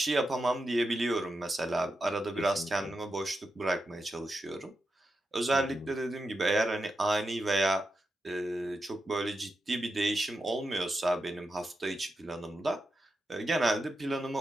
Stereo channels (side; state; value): both; normal; correlation 0.87